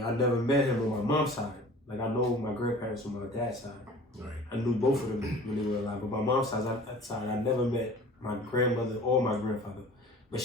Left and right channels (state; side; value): normal; both; correlation 0.44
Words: never met him on my mom's side. Like, I know my grandparents on my dad's side. Right. I knew both of them when they were alive. But my mom's side, I never met my grandmother or my grandfather. But